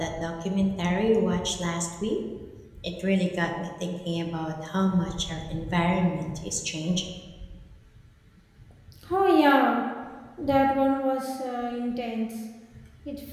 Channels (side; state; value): both; identical; correlation 1.00